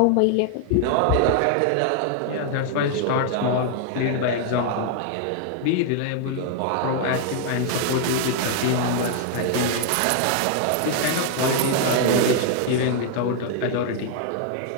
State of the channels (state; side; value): different; both; correlation 0.00